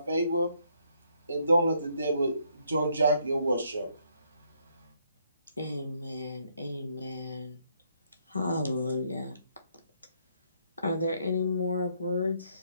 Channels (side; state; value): both; inverted; correlation -0.71